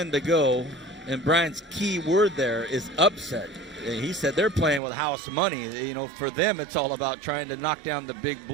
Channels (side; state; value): left; drops out; at 4.8 s